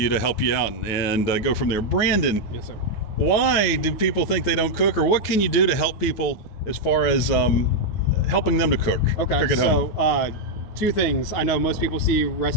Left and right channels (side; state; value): right; late; 9.5 ms